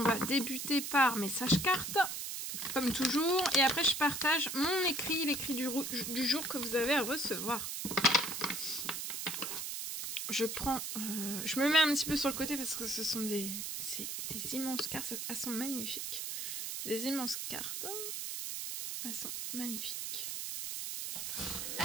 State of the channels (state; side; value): noise; right; hiss, 4 dB below the sound